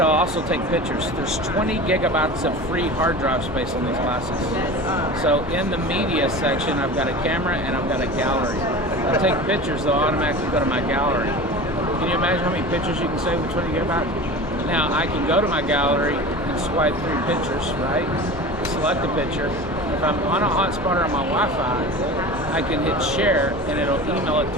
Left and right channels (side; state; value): both; normal; correlation 0.34